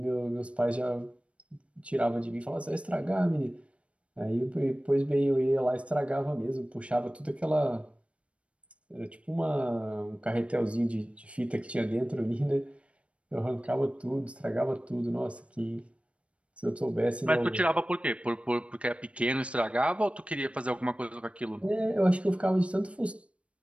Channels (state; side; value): late; left; 0.061 ms